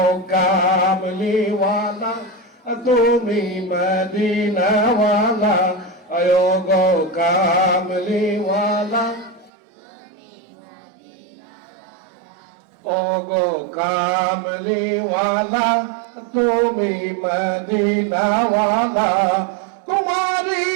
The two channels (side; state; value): left; drops out; at 9.5 s